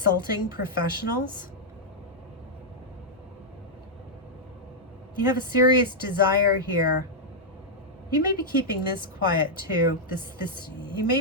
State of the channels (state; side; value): normal; both; correlation -0.05